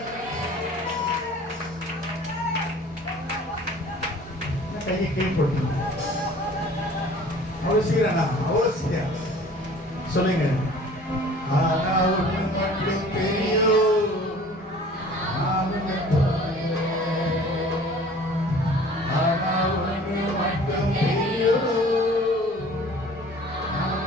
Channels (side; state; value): both; normal; correlation 0.48